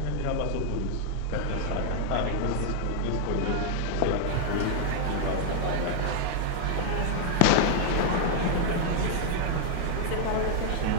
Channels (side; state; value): both; different; correlation -0.01